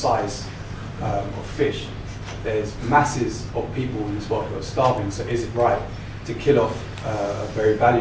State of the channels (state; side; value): identical; both; correlation 1.00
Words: of fish. There's masses of people in this world who are starving, so is it right to kill off a very